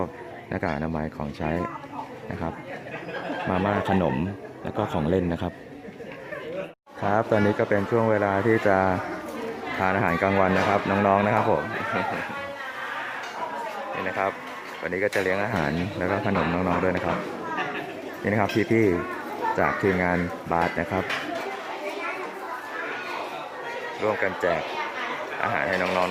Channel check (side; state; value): both; identical; correlation 1.00